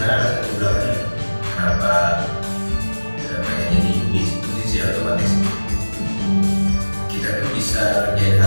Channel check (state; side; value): inverted; both; correlation -1.00